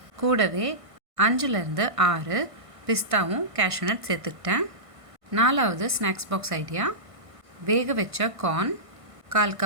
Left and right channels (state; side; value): late; left; 1.5 ms